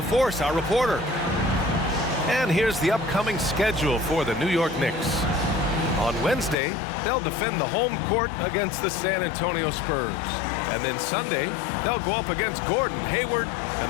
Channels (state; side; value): drops out; right; at 6.6 s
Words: our reporter. And here's the upcoming schedule for the New York Knicks. On Wednesday, they'll defend the home court against the San Antonio Spurs. And then Sunday, they'll go up against Gordon Hayward